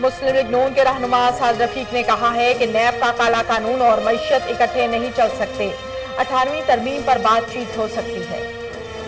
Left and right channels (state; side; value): identical; both; correlation 1.00